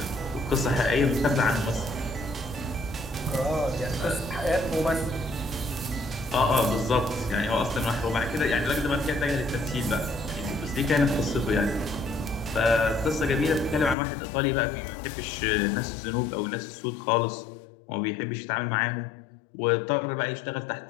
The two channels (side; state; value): right; drops out; at 14.0 s